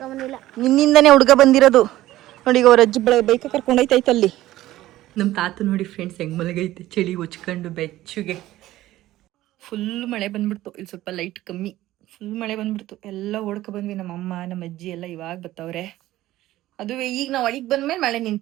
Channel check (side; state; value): left; quieter; 15.3 dB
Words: ನಿನ್ನಿಂದನೇ ಹುಡುಗ ಬಂದಿರೋದು ನೋಡಿ. ಈಗ ಅವ್ರ ಅಜ್ಜಿ ಬೈಕ ಕರ್ಕೊಂಡೈತೈತೆ ಅಲ್ಲಿ. ನಮ್ಮ ತಾತ ನೋಡಿ ಫ್ರೆಂಡ್ಸ್ ಹೆಂಗ್ ಮಲಗೈತೆ ಚಳಿ ಹೊಚ್ಕೊಂಡು ಬೆಚ್ಚುಗೆ. ಫುಲ್ ಮಳೆ ಬಂದ್ಬಿಡ್ತು. ಇಲ್ಲಿ ಸ್ವಲ್ಪ ಲೈಟ್ ಕಮ್ಮಿ. ಫುಲ್ ಮಳೆ ಬಂದ್ಬಿಡ್ತು. ಎಲ್ಲ ಓಡ್ಕೊ ಬಂದ್ವಿ. ನಮ್ಮ ಅಮ್ಮ ನಮ್ಮ ಅಜ್ಜಿ ಎಲ್ಲ ಇವಾಗ ಬತ್ತವ್ರೆ. ಅದುವೇ ಈಗ ನಾವು ಒಳಗೆ ಬಂದ್ಮೇಲೆ ಮಳೆ